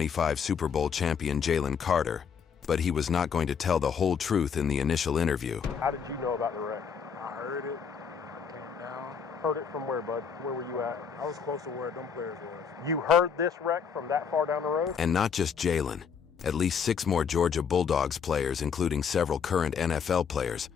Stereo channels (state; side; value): quieter; right; 6.7 dB